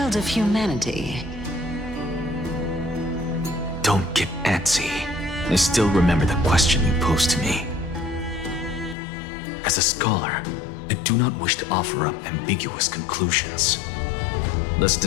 of humanity. Don't get antsy. I still remember the question you posed to me. As a scholar, I do not wish to offer up ambiguous conclusions. Let's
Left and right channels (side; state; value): right; drops out; at 9.0 s